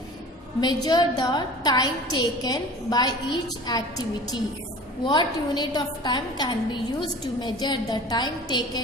time taken by each activity. What unit of time can be used to measure the time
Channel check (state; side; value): normal; both; correlation 0.41